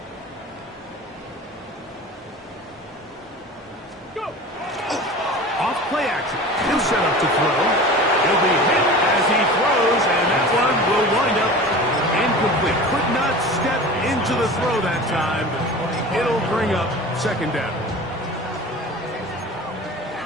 Go. Off play action. He'll set up to throw. He'll be hit as he throws, and that one will wind up incomplete. Could not step into the throw that time. It'll bring up 2nd down.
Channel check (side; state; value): both; normal; correlation 0.36